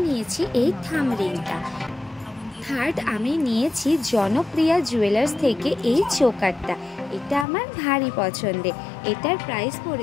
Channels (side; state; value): right; drops out; at 7.5 s